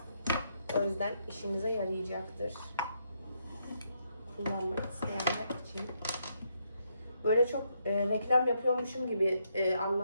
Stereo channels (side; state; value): both; inverted; correlation -0.77